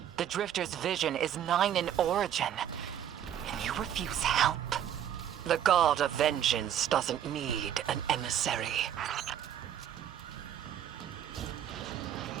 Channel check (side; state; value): left; quieter; 10.1 dB